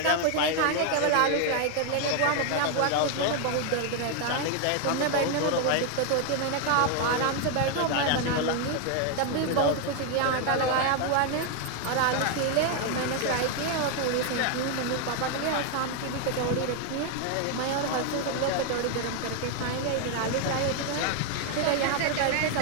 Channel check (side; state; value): both; different; correlation 0.00